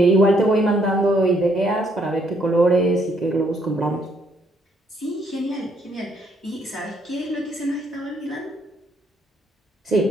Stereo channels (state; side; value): normal; both; correlation 0.69